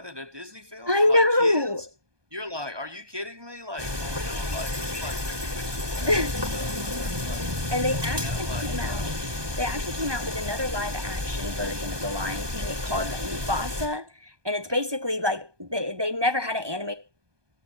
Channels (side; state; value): left; late; 1.2 ms